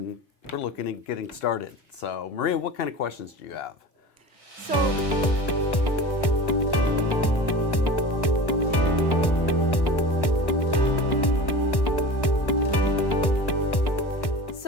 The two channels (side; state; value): right; late; 1.1 ms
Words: we're looking at getting started. So, Maria, what kind of questions do you have?